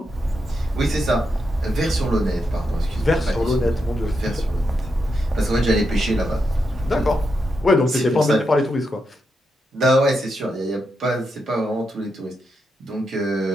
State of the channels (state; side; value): normal; both; correlation 0.84